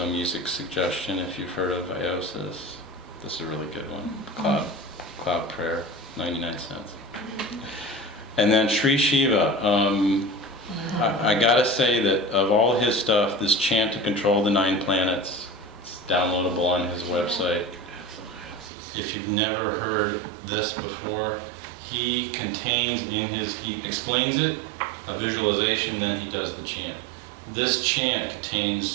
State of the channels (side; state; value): left; drops out; at 18.7 s